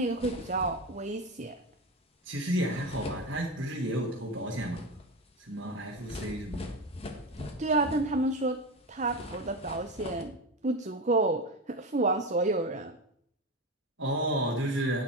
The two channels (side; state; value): both; normal; correlation 0.21